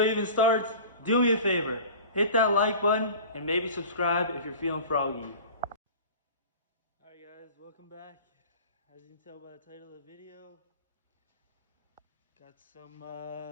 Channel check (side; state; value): both; inverted; correlation -0.39